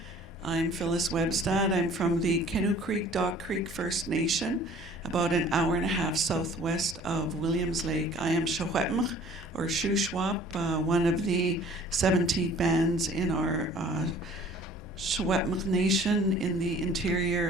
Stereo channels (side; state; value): both; normal; correlation 0.51